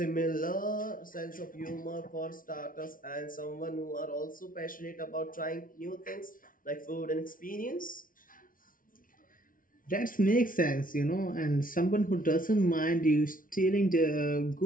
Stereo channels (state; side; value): late; right; 0.39 ms